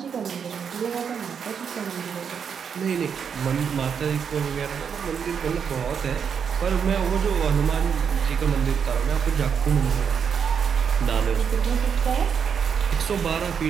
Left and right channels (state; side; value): quieter; left; 7.0 dB